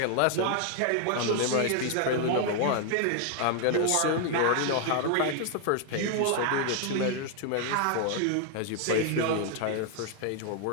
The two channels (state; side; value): different; both; correlation 0.00